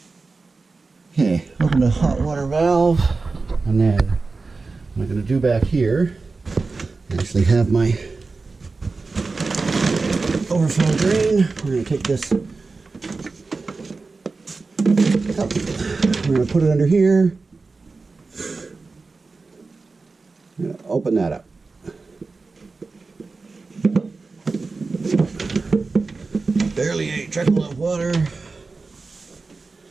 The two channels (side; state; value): left; quieter; 4.0 dB